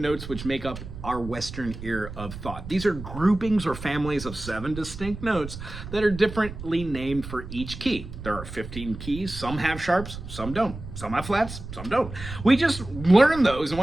which make up our Western ear of thought. These are groupings or families of 7 distinct notes that are differently named for each key. There are 15 keys. Some have sharps, some don't. Some have flats, some don't. We just learn those, and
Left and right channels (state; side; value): noise; right; rumble, 11 dB below the sound